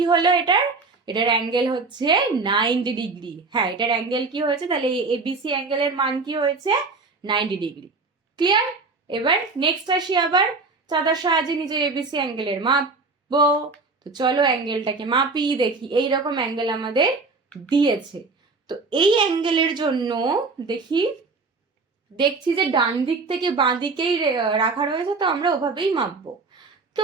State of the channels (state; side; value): quieter; left; 4.0 dB